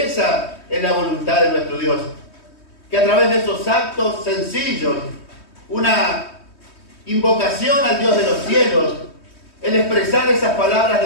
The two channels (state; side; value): late; right; 3.2 ms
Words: esa es la voluntad de nuestro Dios, que a través de esos actos sencillos, una invocación al Dios de los cielos, el expresar esas palabras